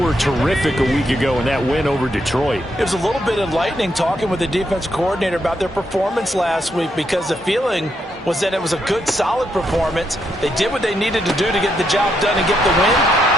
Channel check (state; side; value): normal; both; correlation 0.79